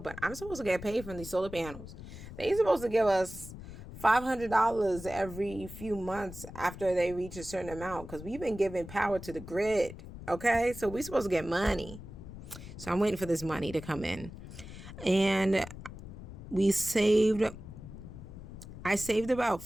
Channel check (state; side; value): noise; left; rumble, 13 dB below the sound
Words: I'm supposed to get paid from these solar panels. They're supposed to give us $500 every few months after they reach a certain amount because we've been giving power to the grid. Okay, so we're supposed to get money. So I'm waiting for this money to come in. And I saved about